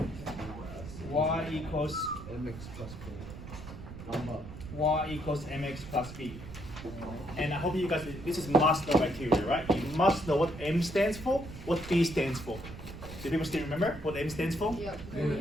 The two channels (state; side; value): noise; right; rumble, 12 dB below the sound